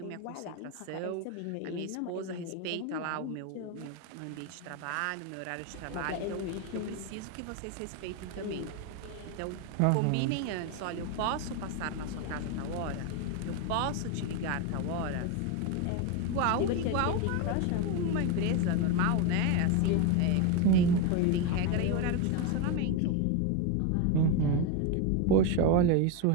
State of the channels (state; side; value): different; both; correlation 0.02